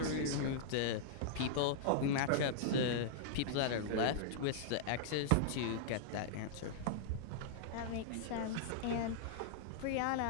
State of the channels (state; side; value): different; both; correlation -0.01